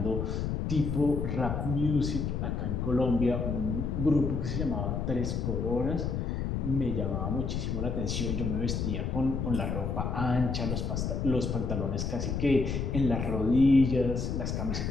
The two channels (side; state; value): left; noise; rumble, 1 dB below the sound